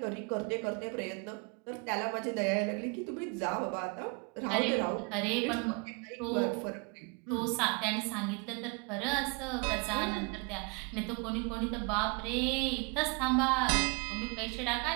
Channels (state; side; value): quieter; left; 33.2 dB